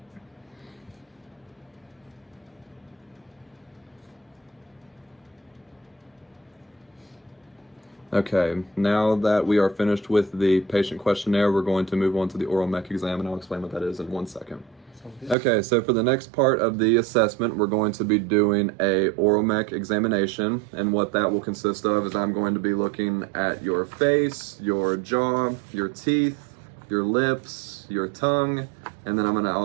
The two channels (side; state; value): left; drops out; at 15.4 s